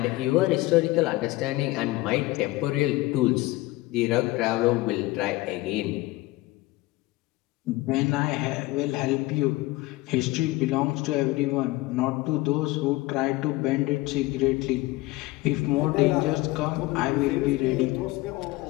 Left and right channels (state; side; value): quieter; right; 19.8 dB